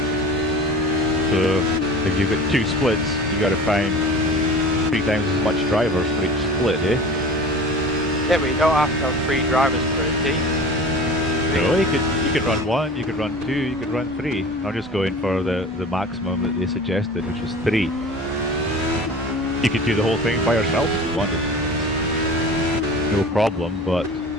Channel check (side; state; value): both; normal; correlation 0.38